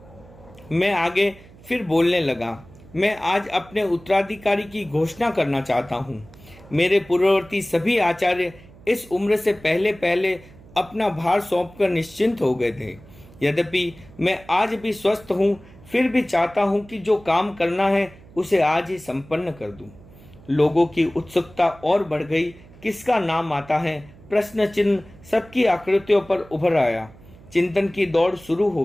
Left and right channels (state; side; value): noise; right; hum, 22 dB below the sound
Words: मैं आगे फिर बोलने लगा। मैं आज अपने उत्तराधिकारी की घोषणा करना चाहता हूँ। मेरे पूर्ववर्ती सभी आचार्य इस उम्र से पहले पहले अपना भार सौंपकर निश्चिंत हो गए थे। यद्यपि मैं आज भी स्वस्थ हूँ, फिर भी चाहता हूँ कि जो काम करना है उसे आज ही संपन्न कर दूं। लोगों की उत्सुकता और बढ़ गई। किसका नाम आता है, प्रश्न चिन्ह सबकी आकृतियों पर उभर आया। चिंतन की दौड़ शुरू हो